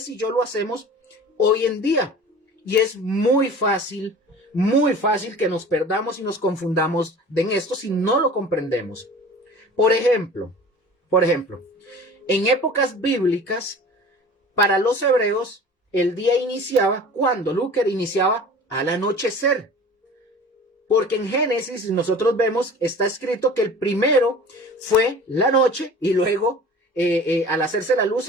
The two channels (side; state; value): both; normal; correlation 0.41